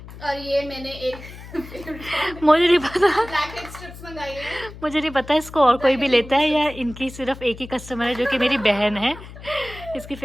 और ये मैंने एक मुझे नहीं पता, ब्लैक हेड स्ट्रिप्स मंगाई है। मुझे नहीं पता इसको और कोई भी लेता है या इनकी सिर्फ एक ही कस्टमर है जो कि मेरी बहन है, इसकी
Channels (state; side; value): noise; left; hum, 15 dB below the sound